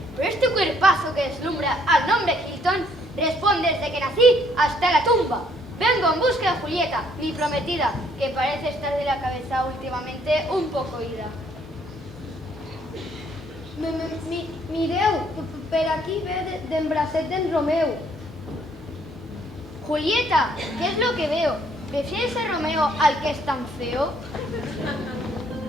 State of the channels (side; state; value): both; normal; correlation 0.65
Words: pero este cuerpazo que deslumbra al nombre Hilton responde desde que nací hasta la tumba. Vengo en busca de Julieta, mi prometida, que parece estar de la cabeza últimamente un poco ida. Mireu, per aquí ve d'en bracet d'en Romeu. Julieta, ¿qué es lo que veo? ¿Prefieres a Romeo al que es tan feo?